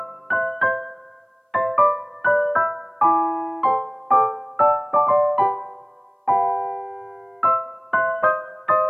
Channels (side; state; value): both; identical; correlation 1.00